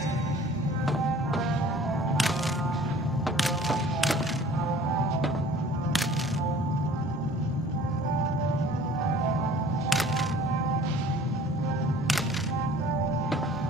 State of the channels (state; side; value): normal; both; correlation 0.49